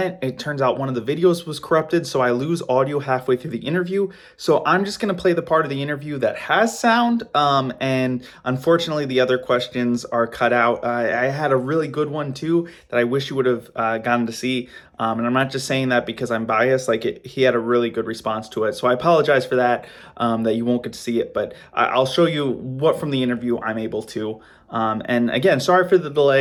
it turns out one of the videos was corrupted, so I lose audio halfway through the interview. So I'm just going to play the part of the interview that has sound, and unfortunately, the other questions are cut out. I had a really good one too that I wish you would have gotten to see. And I'm not just saying that because I'm biased. He had a really good response to it. So I apologize for that, that you won't get to see it. But I'll show you what from the interview I'm able to. And again, sorry for the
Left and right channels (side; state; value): both; identical; correlation 1.00